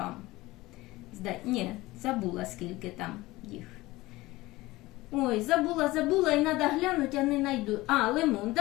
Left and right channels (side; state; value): right; quieter; 19.4 dB